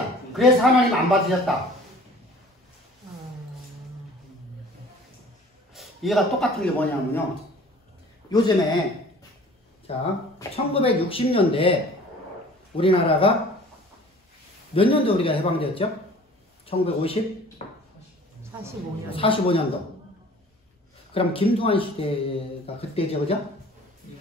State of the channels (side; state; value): both; normal; correlation 0.47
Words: 그래서 하나님 안 받으셨다. 얘가 똑같은 게 뭐냐면요. 요즘에, 자, 1960년대 우리나라가 몇 년도 우리가 해방되었죠? 1950? 45년. 45년도. 그럼 김두한 시대가 그때죠, 그죠?